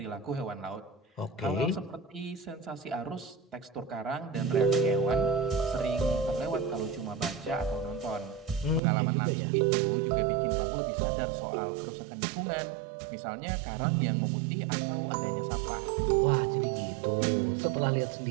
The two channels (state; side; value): drops out; left; at 8.8 s